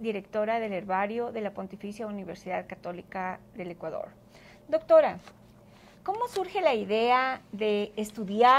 del herbario de la Pontificia Universidad Católica del Ecuador. Doctora, ¿cómo surge la idea de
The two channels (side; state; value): both; identical; correlation 1.00